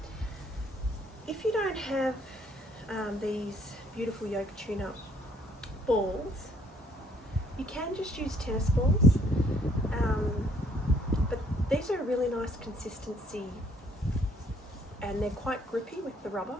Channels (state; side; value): normal; both; correlation 0.64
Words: If you don't have these beautiful yoga tune-up balls, you can just use tennis balls, but these are a really nice consistency and they're quite grippy with the rubber.